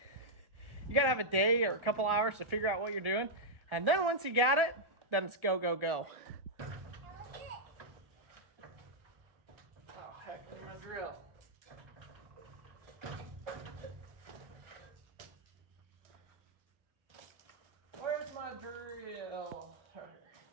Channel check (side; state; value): left; late; 1.4 ms